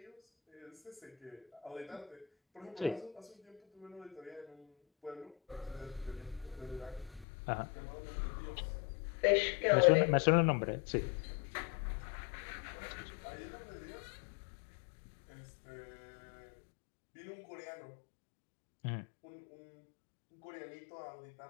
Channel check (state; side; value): drops out; right; at 7.2 s